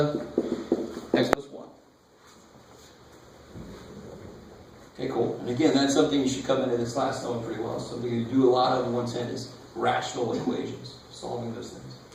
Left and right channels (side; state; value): both; identical; correlation 1.00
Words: x plus 1. Okay, cool. And again, that's something you should come into this class knowing pretty well. Something you do a lot of in 110 is rational equations, solving those things.